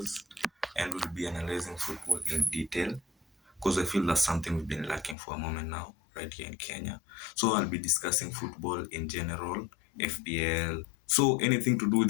and we'll be analyzing football in detail because I feel that's something we've been lacking for a moment now, right here in Kenya. So I'll be discussing football in general, FPL. So anything to do with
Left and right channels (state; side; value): drops out; right; at 5.2 s